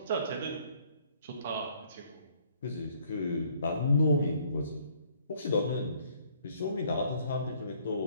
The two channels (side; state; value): both; inverted; correlation -0.62